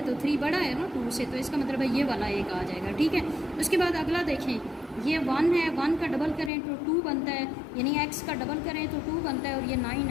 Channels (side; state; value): right; drops out; at 6.5 s